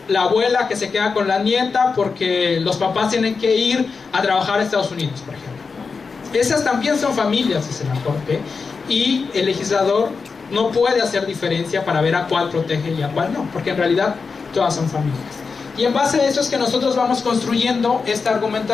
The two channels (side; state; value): right; quieter; 4.9 dB